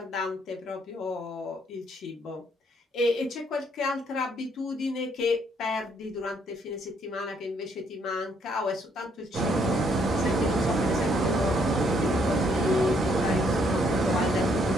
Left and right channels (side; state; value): both; normal; correlation 0.69